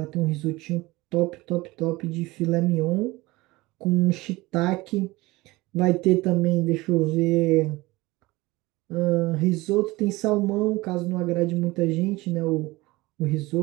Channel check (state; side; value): quieter; left; 20.9 dB